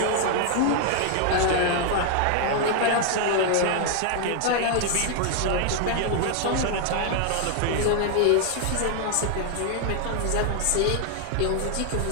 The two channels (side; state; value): both; different; correlation 0.00